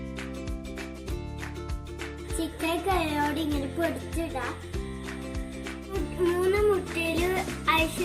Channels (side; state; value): both; identical; correlation 1.00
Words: ചിക്കൻ കൈയോടെ ഇങ്ങനെ പൊടിച്ചിടാം. 3 മുട്ടയിൽ